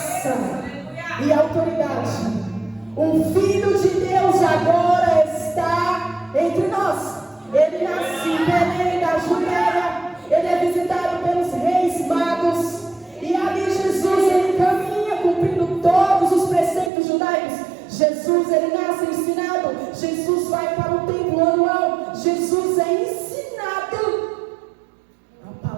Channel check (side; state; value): left; drops out; at 16.9 s